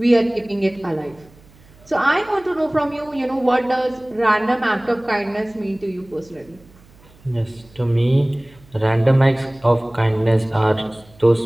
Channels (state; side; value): noise; right; hum, 26 dB below the sound